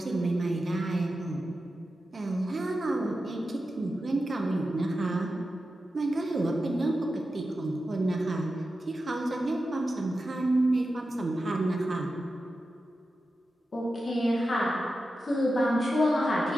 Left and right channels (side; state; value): both; normal; correlation 0.91